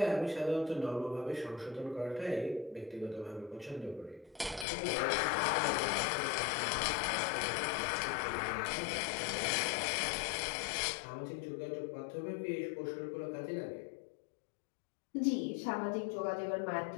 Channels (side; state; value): right; drops out; at 4.7 s